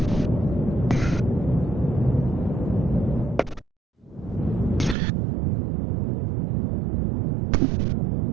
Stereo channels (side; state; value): left; drops out; at 5.0 s